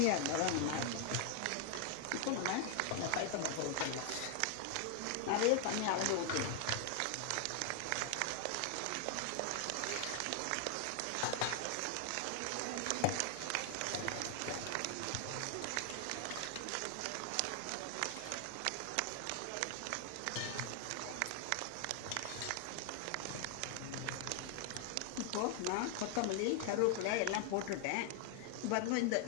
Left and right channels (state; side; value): different; both; correlation 0.00